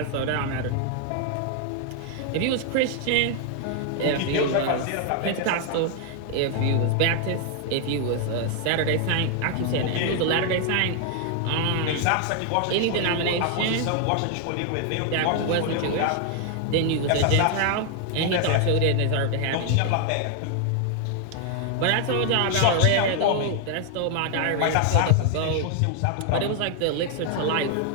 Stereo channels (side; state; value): both; different; correlation 0.00